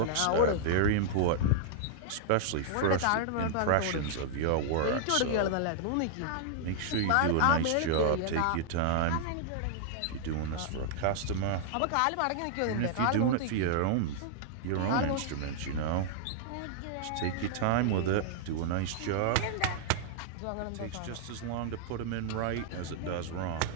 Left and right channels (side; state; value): both; different; correlation -0.01